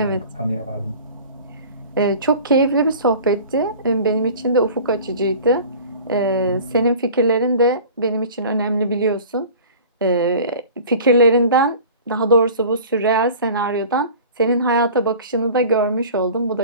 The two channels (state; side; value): inverted; both; correlation -0.42